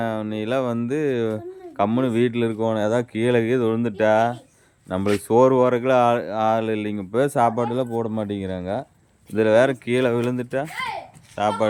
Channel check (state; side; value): identical; both; correlation 1.00